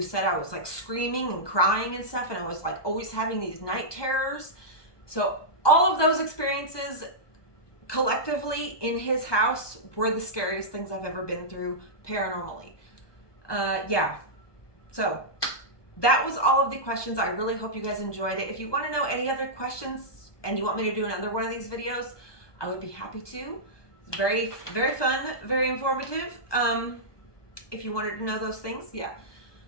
said I was like screaming and crying and stuff, and I was like always having these night terrors. So all of those experiences collectively in his house were the scariest things I've ever been through paranormally. Yeah. So that was all of the questions. I really hope you guys enjoyed it. If you want to know any other questions and you want me to do another one of these videos, I would be happy to. It's very, very fun, very informative. If you wanted to know those things, yeah.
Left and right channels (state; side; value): late; right; 1.2 ms